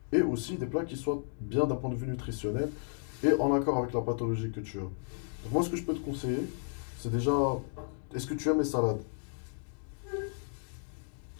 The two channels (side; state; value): right; silent; digital silence